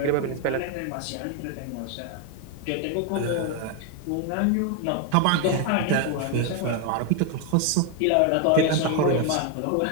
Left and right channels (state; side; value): different; both; correlation 0.01